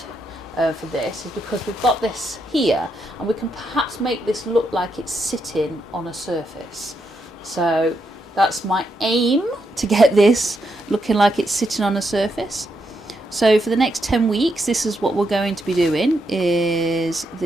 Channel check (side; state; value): both; normal; correlation 0.81